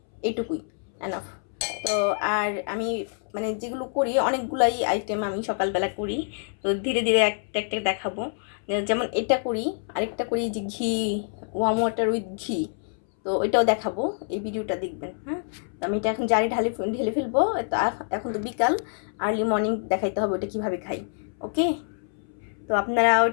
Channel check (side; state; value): right; silent; 61 dB below the other